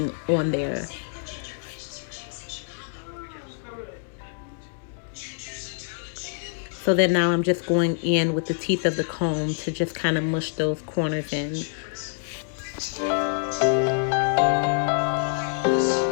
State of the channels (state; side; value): silent; right; digital silence